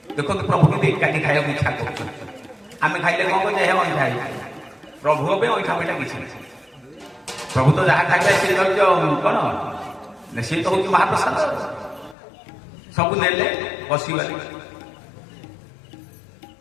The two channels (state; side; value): drops out; right; at 12.2 s